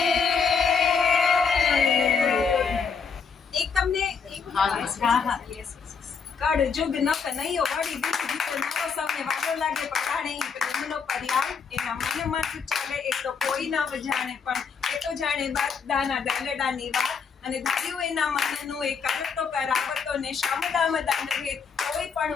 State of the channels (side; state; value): right; quieter; 5.9 dB